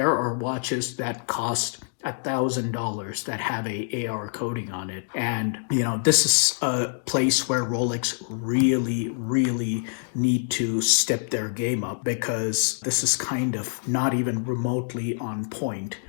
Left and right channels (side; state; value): right; silent; digital silence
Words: are watches that cost $1,000 that have a AR coating on it. And, this is a place where Rolex really, really need to step their game up, because this is kind of not even remotely on point